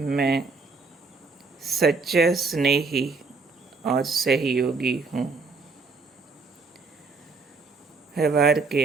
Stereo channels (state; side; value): quieter; left; 4.2 dB